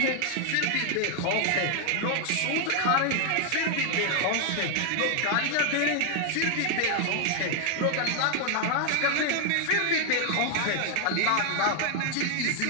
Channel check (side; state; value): both; different; correlation 0.00